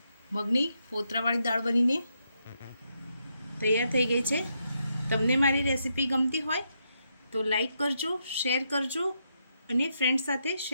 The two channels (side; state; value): both; inverted; correlation -0.80